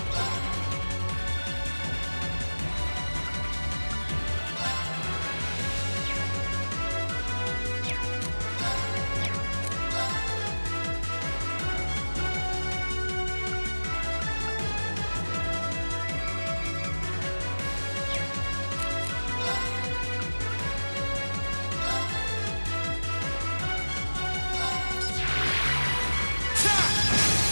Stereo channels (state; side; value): inverted; both; correlation -1.00